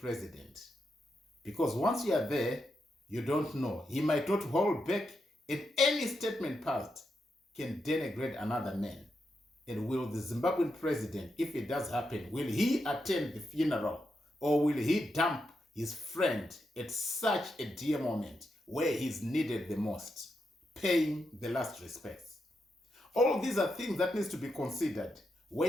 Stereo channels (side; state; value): both; normal; correlation 0.84